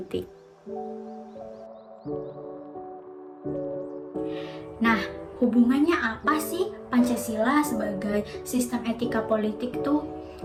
Nah, hubungannya apa sih Pancasila sebagai sistem etika politik tuh?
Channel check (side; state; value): both; identical; correlation 1.00